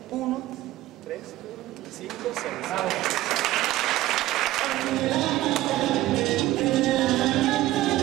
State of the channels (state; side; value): quieter; left; 16.0 dB